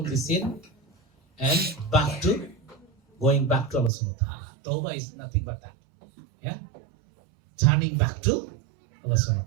the sin and going back to Allah subhanahu wa ta'ala. Tawbah is nothing but that. Yeah? Turning back to Allah subhanahu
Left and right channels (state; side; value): drops out; left; at 3.9 s